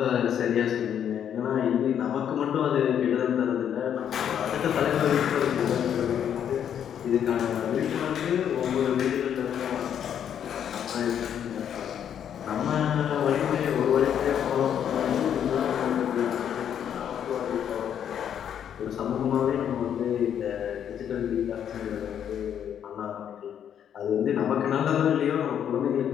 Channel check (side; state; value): right; quieter; 9.1 dB